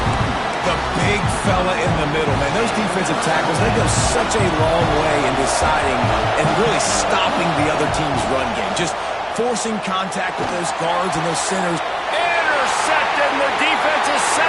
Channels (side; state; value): both; identical; correlation 1.00